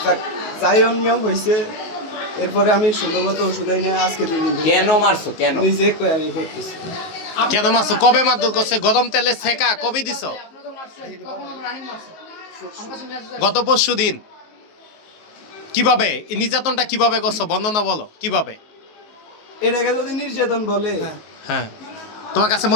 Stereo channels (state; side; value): late; right; 19 ms